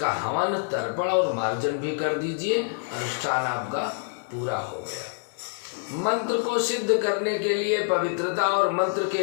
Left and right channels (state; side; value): silent; right; 61 dB below the other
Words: हवन, तर्पण और मार्जन भी कर दीजिए, अनुष्ठान आपका पूरा हो गया। मंत्र को सिद्ध करने के लिए पवित्रता और मंत्र